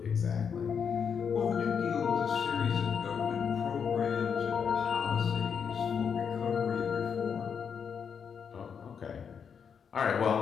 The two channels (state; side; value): quieter; right; 6.9 dB